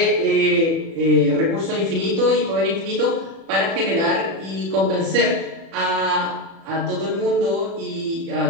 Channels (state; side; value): late; left; 36 ms